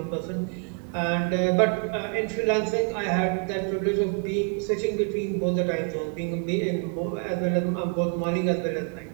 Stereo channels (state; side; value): quieter; left; 39.5 dB